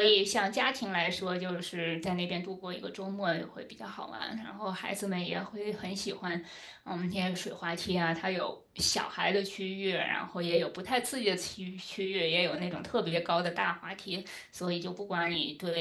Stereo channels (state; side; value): identical; both; correlation 1.00